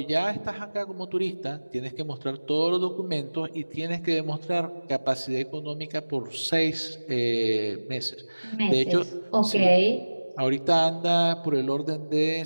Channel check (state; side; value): inverted; both; correlation -1.00